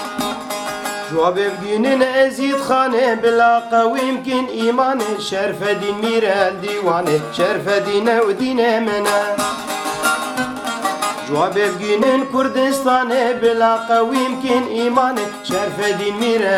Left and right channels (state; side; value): identical; both; correlation 1.00